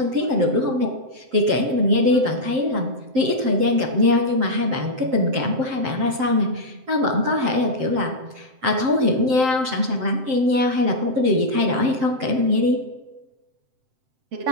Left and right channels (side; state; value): left; late; 7.7 ms